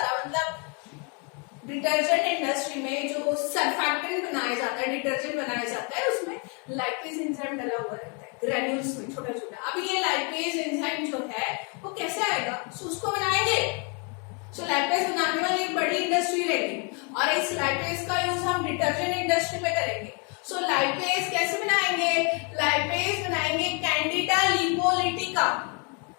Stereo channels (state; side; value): quieter; right; 35.2 dB